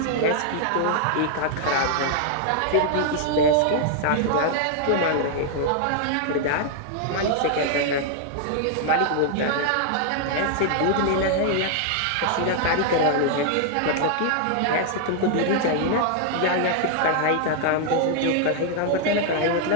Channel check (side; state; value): both; different; correlation 0.00